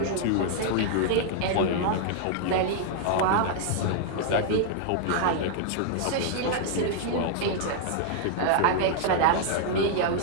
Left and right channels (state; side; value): different; both; correlation -0.01